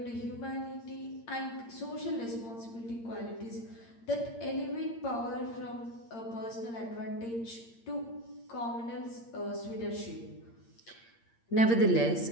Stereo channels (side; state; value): right; late; 8.7 ms